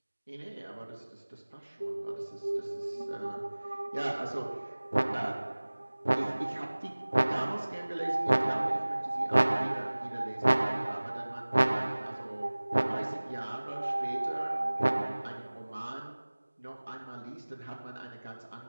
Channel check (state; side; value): inverted; both; correlation -1.00